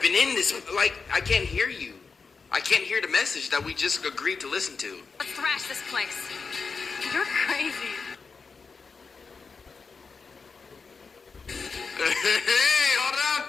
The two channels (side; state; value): right; quieter; 4.9 dB